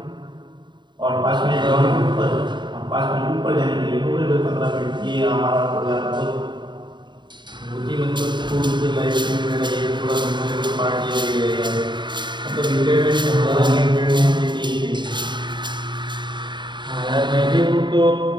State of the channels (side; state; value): left; late; 0.22 ms